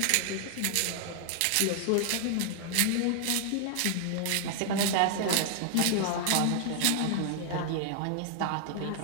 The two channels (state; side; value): different; both; correlation 0.00